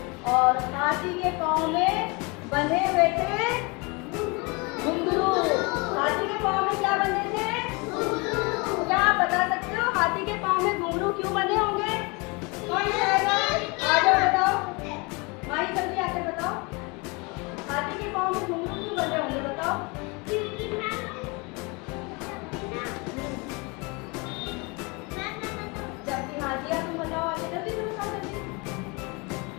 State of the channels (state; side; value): quieter; right; 28.5 dB